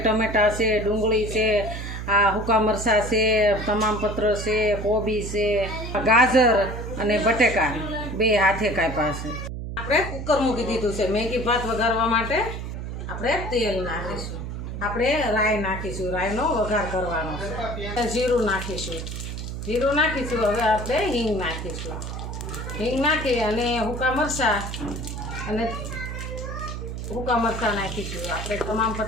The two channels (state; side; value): noise; right; hum, 6 dB below the sound